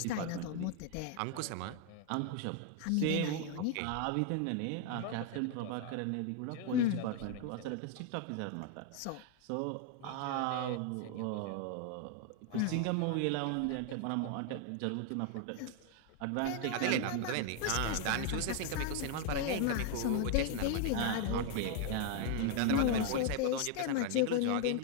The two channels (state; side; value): different; both; correlation 0.00